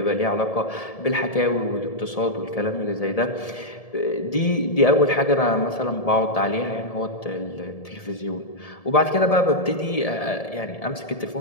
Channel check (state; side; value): late; right; 1.7 ms